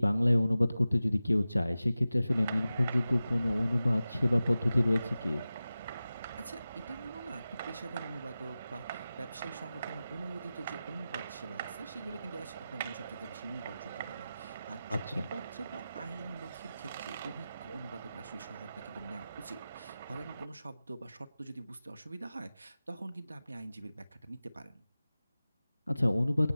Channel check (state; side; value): inverted; both; correlation -0.94